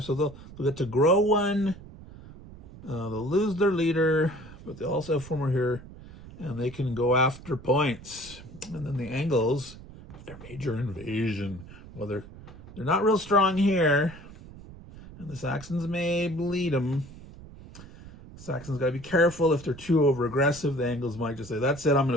So they'll get to grow 1. They'll lose their leader, but they also have 4 more here. And they can go after points. And then the Angles, their major invasion. Well, they're not real strong here, and the Saxons may bleed them. Saxons got to be careful if they're too over-aggressive. The Angles might just say, that's it, I'm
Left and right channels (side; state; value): right; noise; rumble, 17 dB below the sound